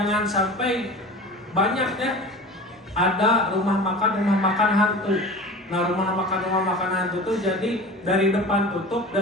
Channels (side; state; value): both; normal; correlation 0.36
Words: sampai banyak ya ada rumah makan hantu. Nah, rumah makan hantu itu jadi dari depan tutup,